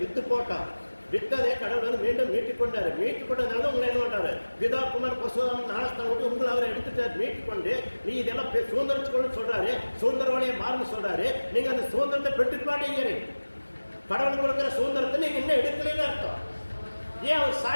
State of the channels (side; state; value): both; inverted; correlation -1.00